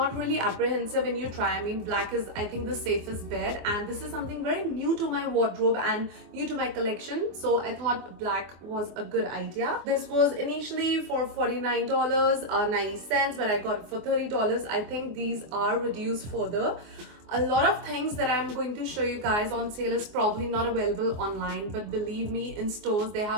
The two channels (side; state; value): left; late; 24 ms